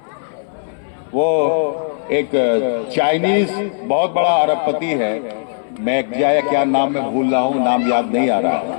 वो एक चाइनीज बहुत बड़ा अरबपति है, मैं क्या नाम में भूल रहा हूं, नाम याद नहीं आ रहा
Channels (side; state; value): right; silent; 61 dB below the other